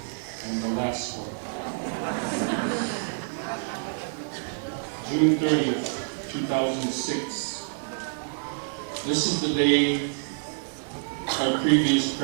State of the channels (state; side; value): silent; left; 60 dB below the other